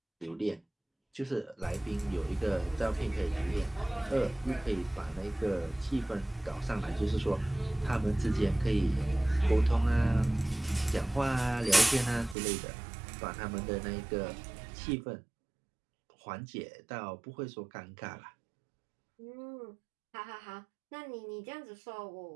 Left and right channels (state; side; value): drops out; left; at 12.4 s